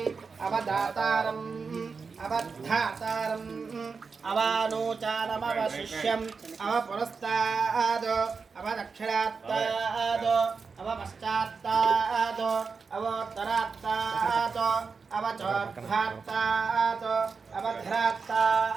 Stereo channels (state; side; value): quieter; left; 5.0 dB